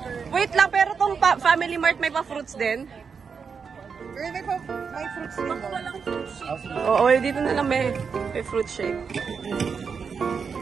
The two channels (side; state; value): left; quieter; 5.9 dB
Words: Wait lang, pero tong Family Mart may pa-fruits din? May fruits din. Walang fruit shake. Oo, dito na lang may fruit shake.